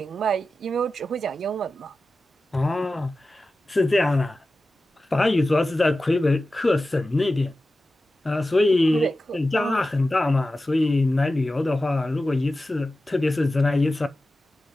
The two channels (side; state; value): both; normal; correlation 0.94